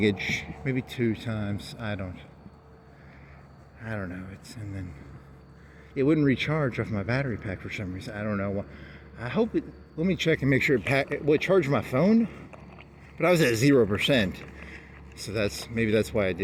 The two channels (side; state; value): both; identical; correlation 1.00